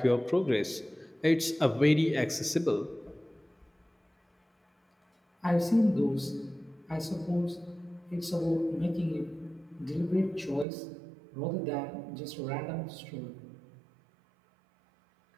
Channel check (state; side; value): drops out; left; at 10.7 s